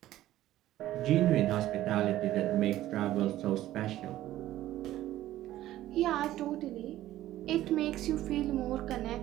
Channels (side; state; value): left; quieter; 14.2 dB